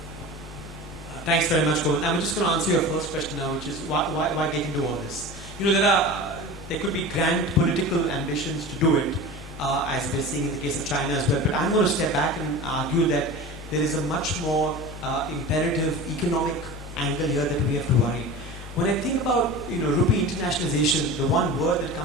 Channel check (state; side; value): noise; right; rumble, 23 dB below the sound